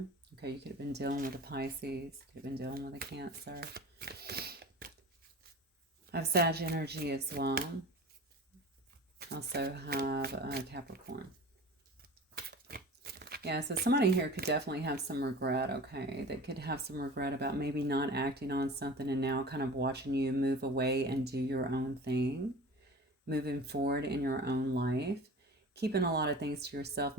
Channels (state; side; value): normal; both; correlation 0.38